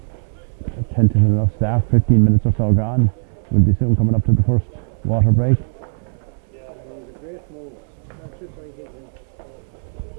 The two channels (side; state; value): left; silent; 64 dB below the other